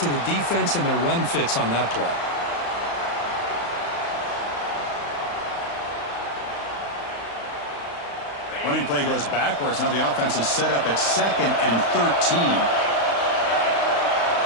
to the defense and their run fits on that play. Running play goes backwards. Now the offense is set up at 2nd and 13.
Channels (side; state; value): right; late; 35 ms